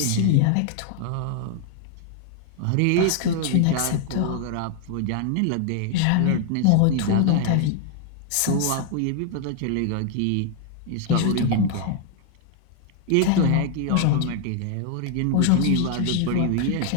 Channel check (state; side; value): different; both; correlation 0.00